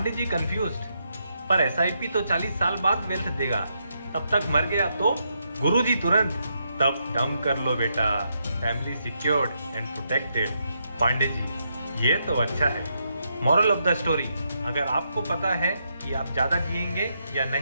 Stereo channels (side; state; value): both; inverted; correlation -0.80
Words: ji confused, पर एसआईपी तो 40 साल बाद वेल्थ देगा, तब तक मर गया तो गुरुजी तुरंत, तब टर्म कर लो बेटा, family secured and protected. Pandey ji ये तो अच्छा है। मॉरल ऑफ द स्टोरी, अगर आपको पता है कि आप ज़्यादा जिएंगे या